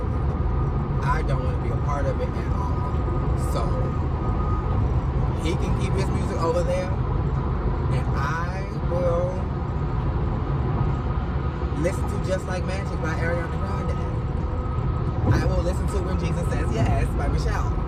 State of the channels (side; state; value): both; identical; correlation 1.00